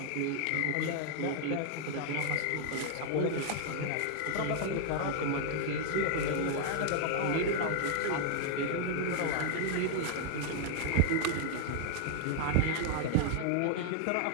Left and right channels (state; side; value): different; both; correlation 0.00